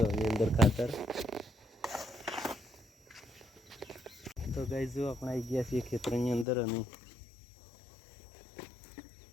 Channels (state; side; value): drops out; right; at 6.5 s